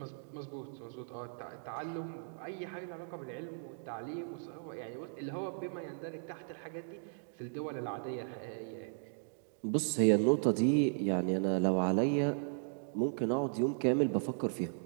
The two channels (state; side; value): silent; left; digital silence